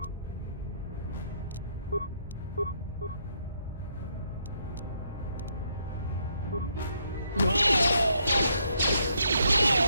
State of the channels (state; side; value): inverted; both; correlation -0.73